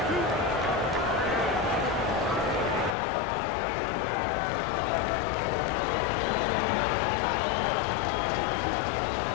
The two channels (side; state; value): right; drops out; at 3.0 s